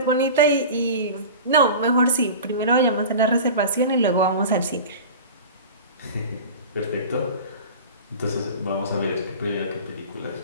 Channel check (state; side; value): inverted; both; correlation -0.34